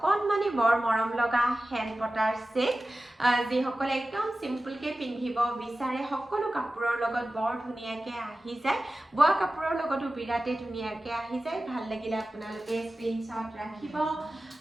বৰ মৰম লগা হেণ্ড পটাৰ সেট। যিসকলে একদম চিম্পলকৈ পিন্ধিব বিচাৰে সকলো কাপোৰৰ লগত বৰ ধুনীয়াকৈ আহি যায়। বোৱা কাপোৰৰ লগতো বিৰাটেই ধুনীয়াকৈ আহি যায়। ভাল লাগিলে আপোনালোকে স্ক্ৰীনশ্বট ৰাখিব।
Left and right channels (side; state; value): both; normal; correlation 0.95